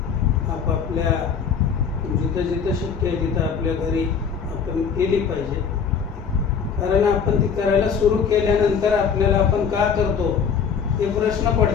आपापल्या जिथं जिथं शक्य आहे तिथं आपल्या घरी आपण केली पाहिजे. कारण आपण ती करायला सुरू केल्यानंतर आपल्याला आपण का करतो हे प्रश्न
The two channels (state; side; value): quieter; right; 6.6 dB